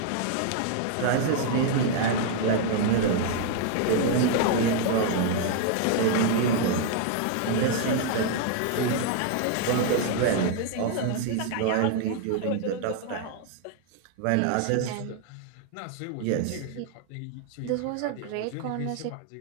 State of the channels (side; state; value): both; different; correlation 0.00